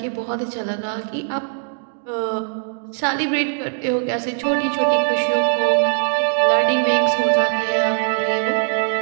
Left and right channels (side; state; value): left; silent; digital silence